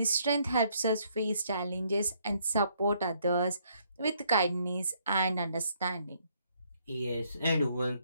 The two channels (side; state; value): both; inverted; correlation -0.69